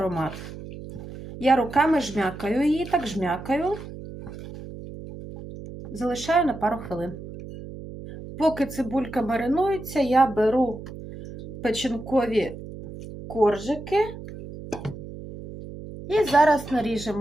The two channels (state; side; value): noise; right; hum, 12 dB below the sound